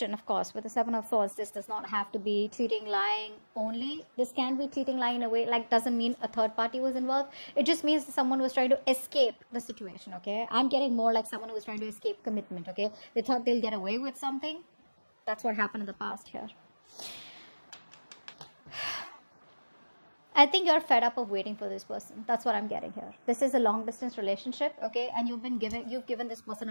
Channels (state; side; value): inverted; both; correlation -1.00